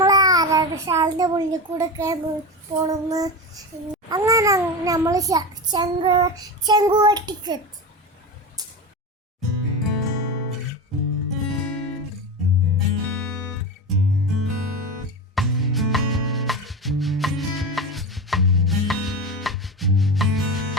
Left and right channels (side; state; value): both; normal; correlation 0.22